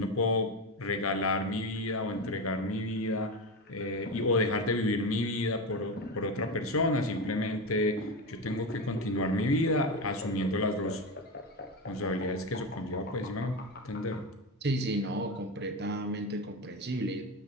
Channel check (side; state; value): both; normal; correlation 0.18